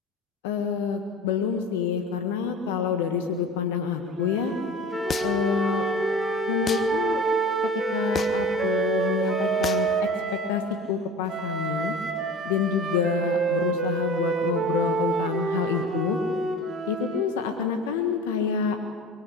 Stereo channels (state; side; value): normal; both; correlation 0.37